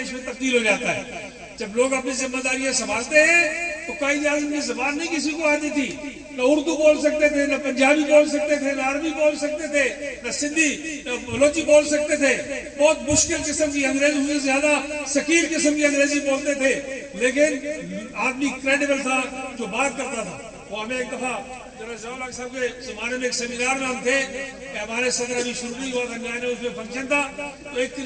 میں تبدیل ہو جاتا ہے۔ جب لوگ اپنی ذمہ داریاں سنبھالتے ہیں تو قائد اعظم کی زبان نہیں کسی کو آتی تھی، نہ اردو بول سکتے تھے، نہ پنجابی بول سکتے تھے، نہ عربی بول سکتے تھے، نہ سندھی، نہ بلوچی بول سکتے تھے، بہت مشکل قسم کی انگریزی سے زیادہ ثقیل قسم کی انگریزی بولتے تھے، لیکن آدمی کریڈیبل تھا جو بات کرتا تھا۔ وہ ہمیں ایک دفعہ ضیاء الحق صاحب کے زمانے میں ایک سیمینار میں ہم تھے کہ ہمارے صدر ابھی شروع نہیں ہوا تھا، نیا نیا اس میں فنکشن تھا، تو ایک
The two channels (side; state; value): both; identical; correlation 1.00